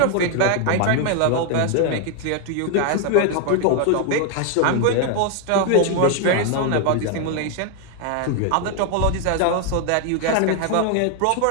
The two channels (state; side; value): different; both; correlation 0.00